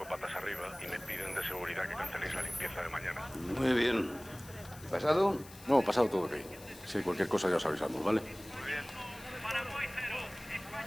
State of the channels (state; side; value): noise; left; hiss, 19 dB below the sound